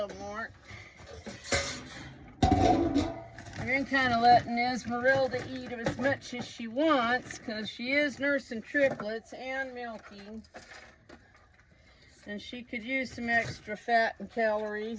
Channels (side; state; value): both; identical; correlation 1.00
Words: more. I've been kind of letting Esmeralda eat as much as she wants because she is nursing triplets and milking. And she could use some extra fat and